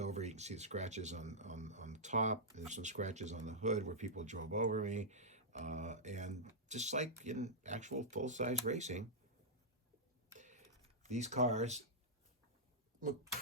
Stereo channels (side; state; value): both; normal; correlation -0.10